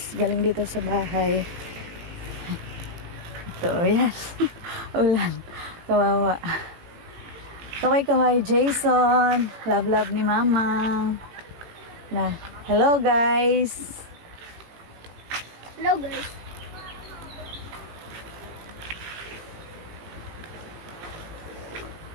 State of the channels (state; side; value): late; left; 18 ms